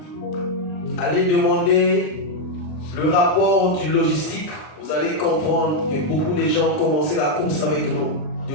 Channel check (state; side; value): late; right; 40 ms